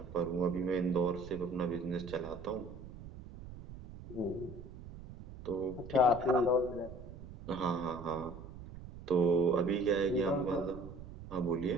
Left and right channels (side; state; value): right; noise; rumble, 14 dB below the sound